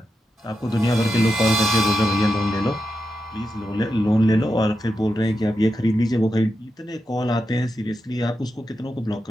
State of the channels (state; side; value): normal; both; correlation 0.88